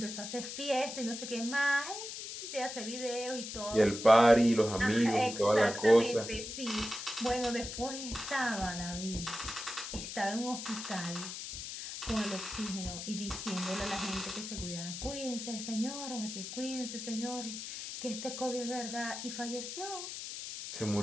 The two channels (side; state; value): left; noise; hiss, 8 dB below the sound